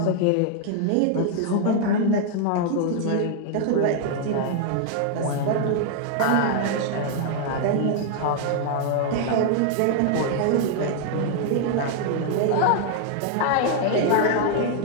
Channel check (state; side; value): different; both; correlation 0.00